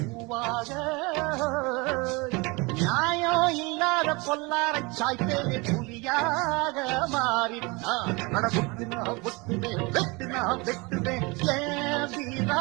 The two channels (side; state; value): left; quieter; 26.7 dB